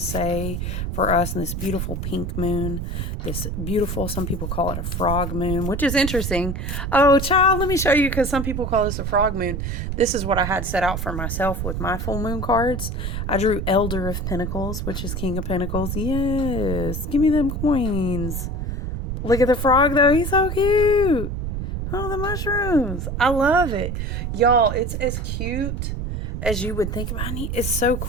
for us in this beautiful pink moon? This beautiful, some people call it a frog moon, which is interesting. Oh, child, let me show you, because some people call this a frog moon. This is what I had set out for myself with my full moon cards. I drew Elder of Pentacles, which is King of Pentacles. Yes, give me them coins. Look at the frog, though. He's so cute. Oh, the mushrooms. I love it. Y'all, it's as cute as you would think about it. It's so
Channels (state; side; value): noise; right; rumble, 3 dB below the sound